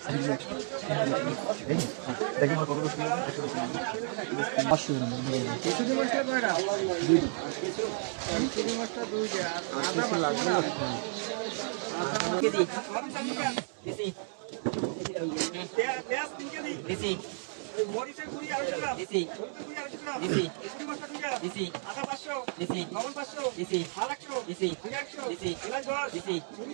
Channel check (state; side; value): silent; left; 56 dB below the other